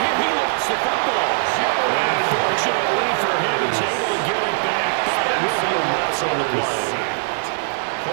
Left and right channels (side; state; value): left; silent; digital silence